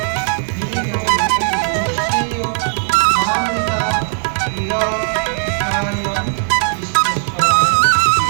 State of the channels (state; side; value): silent; left; 68 dB below the other